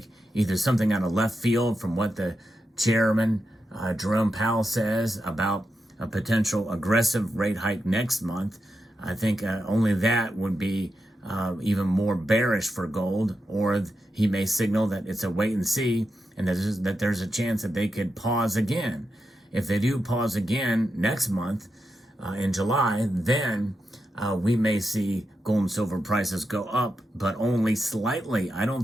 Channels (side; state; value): both; normal; correlation 0.87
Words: either something out of left field from what the chairman, Jerome Powell, says about a potential aggressive rate hike next month. I think only that would be even more bearish for gold, or he may signal that it's a wait and see, and that there's a chance that they could pause again. If they do pause again next month in July, then we may see gold and silver prices go up, but only slightly. I don't